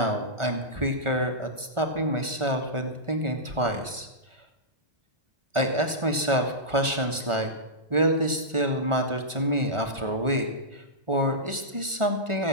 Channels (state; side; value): late; left; 1.4 ms